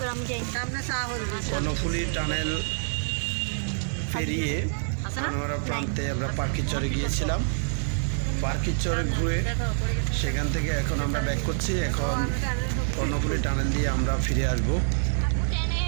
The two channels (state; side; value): silent; left; digital silence